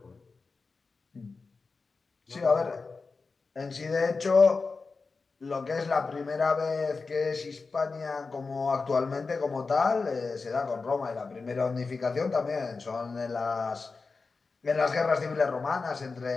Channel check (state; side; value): quieter; right; 4.3 dB